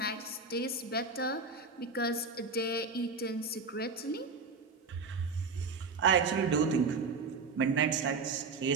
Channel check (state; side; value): quieter; left; 4.4 dB